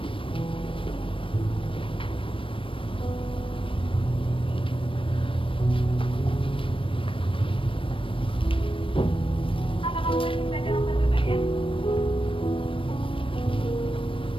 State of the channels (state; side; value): late; right; 0.25 ms